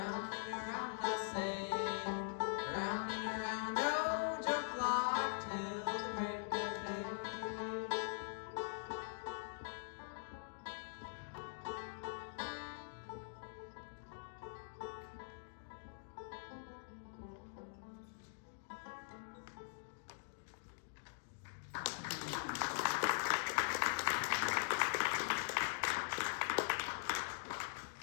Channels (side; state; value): right; silent; digital silence